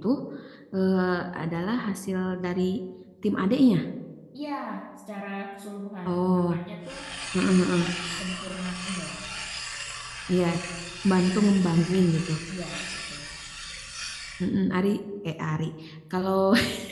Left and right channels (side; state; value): both; identical; correlation 1.00